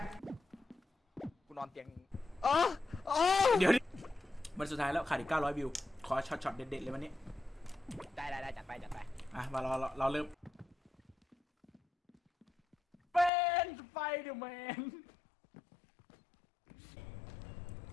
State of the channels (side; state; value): right; drops out; at 13.3 s